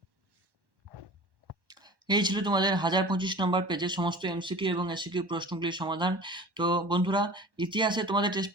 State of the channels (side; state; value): left; late; 1.1 ms